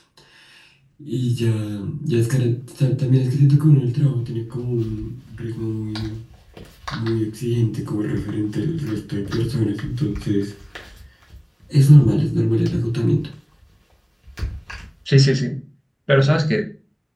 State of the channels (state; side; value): identical; both; correlation 1.00